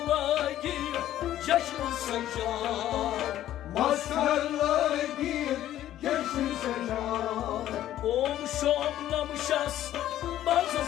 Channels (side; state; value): right; quieter; 12.7 dB